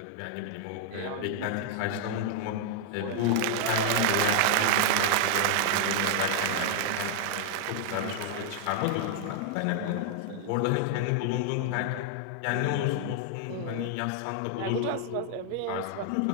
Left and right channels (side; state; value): both; different; correlation 0.00